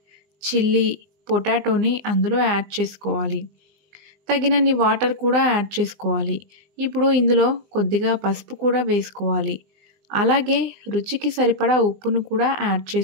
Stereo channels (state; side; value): late; left; 20 ms